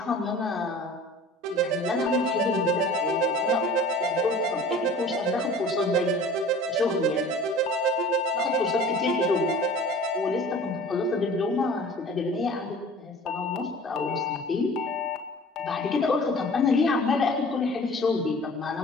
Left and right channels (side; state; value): both; normal; correlation 0.44